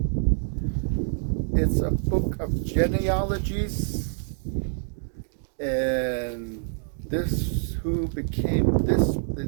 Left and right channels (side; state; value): left; silent; digital silence